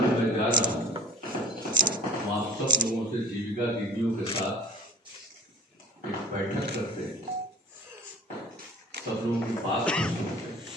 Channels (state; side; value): normal; both; correlation 0.44